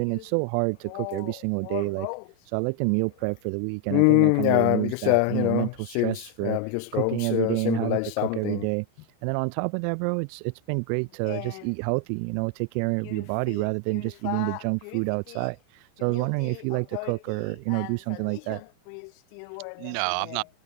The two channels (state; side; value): different; both; correlation 0.01